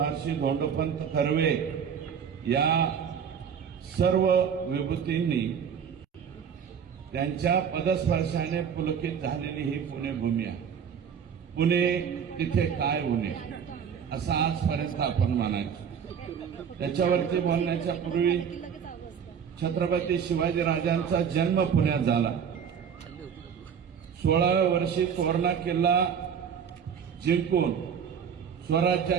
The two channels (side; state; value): left; quieter; 7.4 dB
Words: धोंडोपंत कर्वे या सर्व विभूतींनी त्यांच्या पदस्पर्शाने पुलकित झालेली ही पुणे भूमी आहे। पुणे तिथे काय उणे असं आजपर्यंत आपण म्हणायचं। त्याच्यावरती बोलण्याच्या पूर्वी छत्रपती शिवाजी राजांचा जन्म पुण्यात झाला। 16व्या वर्षी तोरणा किल्ला जिंकून